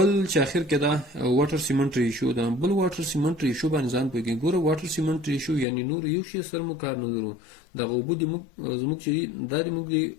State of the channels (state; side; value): drops out; right; at 5.7 s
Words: چې اخر کې دا واټر سیمنټ ریشیو ده. بل واټر سیمنټ ریشیو باندې ځان پوهېږي. ګوره واټر سیمنټ ریشیو یعنی نور یو شی سره موږ کار نه لرو دغه اوبه د زموږ چې دا د موږ د